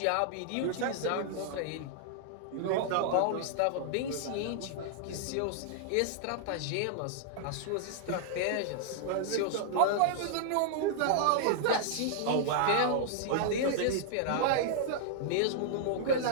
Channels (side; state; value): both; different; correlation -0.01